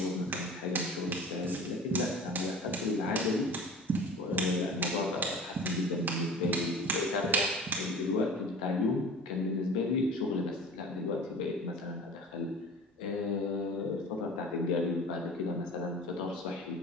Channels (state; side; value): normal; both; correlation 0.39